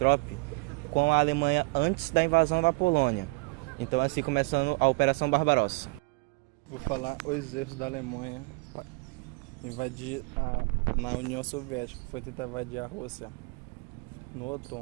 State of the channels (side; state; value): left; quieter; 28.8 dB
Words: com a Alemanha antes da invasão da Polônia. Então, assim começando a Operação Barbarossa. Vou falar os erros da Alemanha para invadir na União Soviética, foi tentar invadir a Rússia no